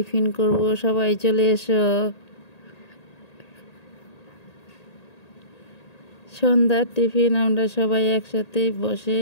করব, সবাই চলে এসো। সন্ধ্যার টিফিন আমরা সবাই একসাথে বসে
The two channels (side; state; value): right; late; 1.8 ms